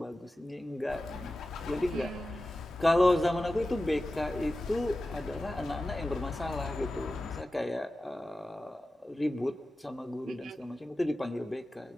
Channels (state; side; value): normal; both; correlation 0.94